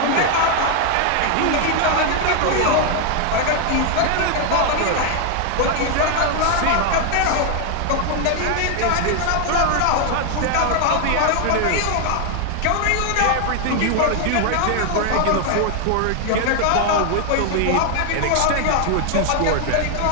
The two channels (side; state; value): both; different; correlation 0.00